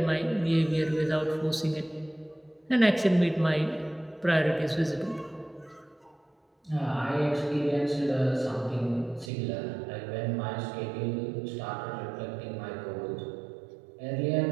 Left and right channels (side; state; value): left; drops out; at 9.3 s